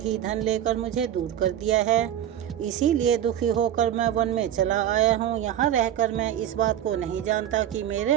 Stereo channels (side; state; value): left; quieter; 10.8 dB